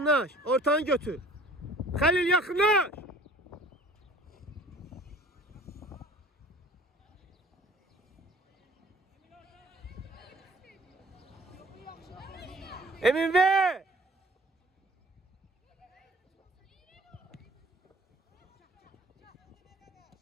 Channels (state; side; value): normal; both; correlation 0.50